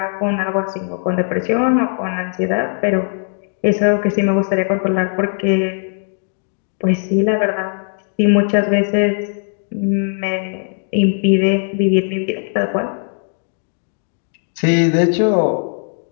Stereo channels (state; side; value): silent; right; 57 dB below the other